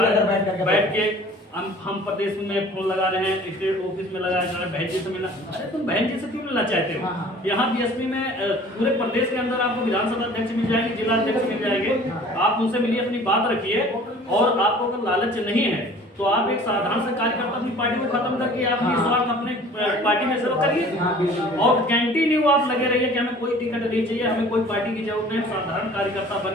बैठ के हम प्रदेश में फोन लगा रहे हैं, स्टेट ऑफिस में लगा रहे हैं, बहन जी से मिलना। अरे तुम बहन जी से क्यों मिलना चाहते हो? यहाँ बीएसपी में पूरे प्रदेश के अंदर आपको विधानसभा अध्यक्ष मिल जाएंगे, जिला अध्यक्ष मिल जाएंगे, आप उनसे मिलिए, अपनी बात रखिए। और आपको अगर लालच नहीं है तो आप एक साधारण से कार्यकर्ता अपनी पार्टी को खत्म करके अपनी स्वार्थ अपने पार्टी में सेवा करिए, और कंटिन्यू आप लगे रहिए कि हमें कोई टिकट नहीं चाहिए, हमें कोई पार्टी की जरूरत नहीं, साधारण कार्यकर्ता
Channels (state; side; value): normal; both; correlation 0.48